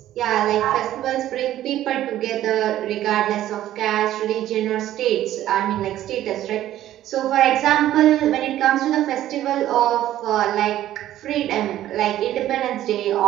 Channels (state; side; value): quieter; left; 13.1 dB